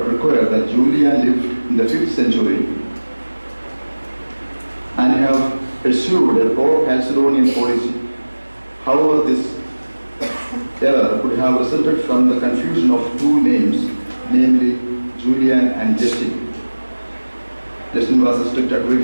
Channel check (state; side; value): inverted; both; correlation -1.00